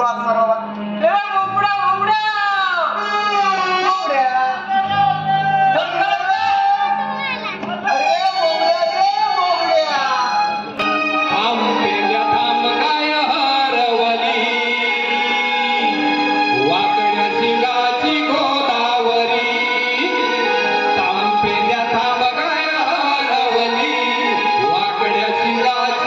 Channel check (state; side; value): identical; both; correlation 1.00